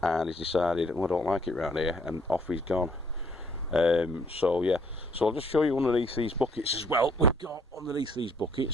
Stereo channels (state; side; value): normal; both; correlation 0.64